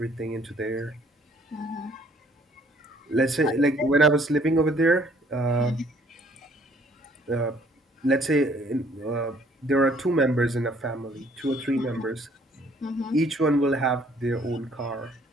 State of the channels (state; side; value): normal; both; correlation 0.61